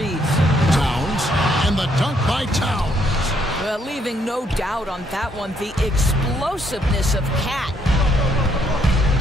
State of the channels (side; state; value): both; normal; correlation 0.71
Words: Towns, and the dunk by Towns. Leaving no doubt on that one, the explosiveness of Cat.